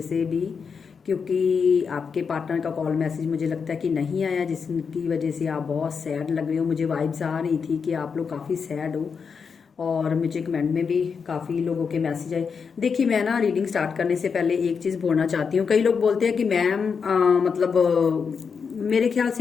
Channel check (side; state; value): right; quieter; 5.9 dB